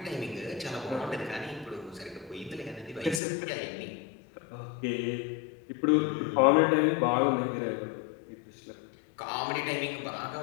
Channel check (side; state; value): right; drops out; at 3.2 s